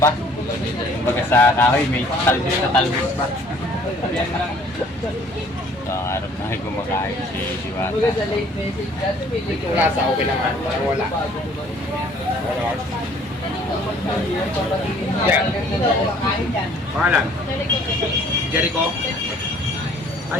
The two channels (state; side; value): normal; both; correlation 0.57